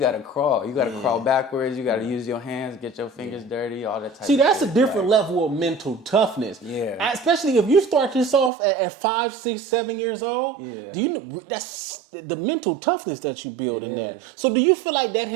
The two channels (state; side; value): drops out; left; at 8.5 s